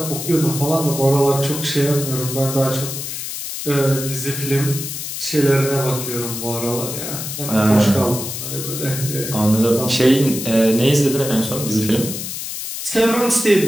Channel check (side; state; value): left; noise; hiss, 6 dB below the sound